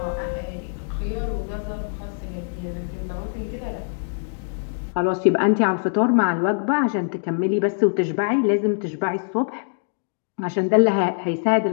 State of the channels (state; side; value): silent; right; digital silence